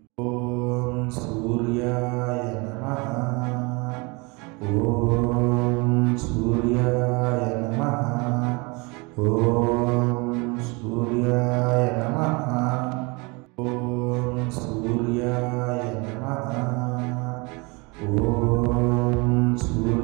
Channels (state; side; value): quieter; left; 28.0 dB